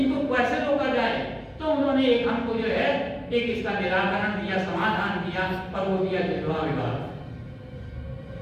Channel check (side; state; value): both; identical; correlation 1.00